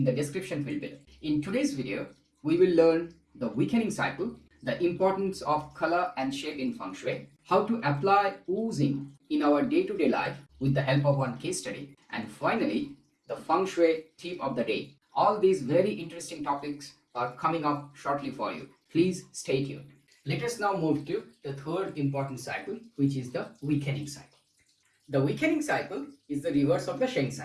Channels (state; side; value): identical; both; correlation 1.00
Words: the description field below. In today's video, we will learn the weakening cycle, the importance of color and shape in Feng Shui, how to apply oozing in our day-to-day life with the help of one case study, and finally, the Feng Shui tip of the day. All these very interesting topics are coming up shortly for you. Please stay tuned. Let us now move to the third important cycle, which is the weakening cycle. The weakening cycle is the reverse of the Sheng